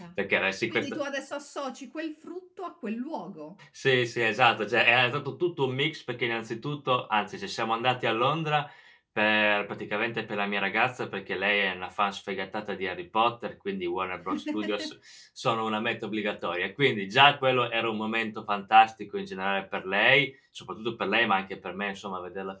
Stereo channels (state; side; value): identical; both; correlation 1.00